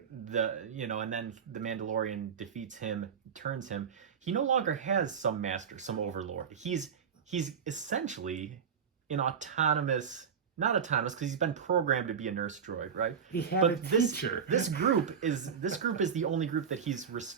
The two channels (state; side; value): quieter; left; 7.0 dB